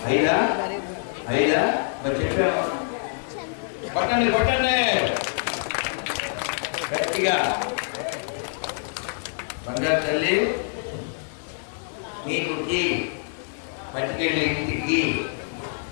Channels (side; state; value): right; silent; digital silence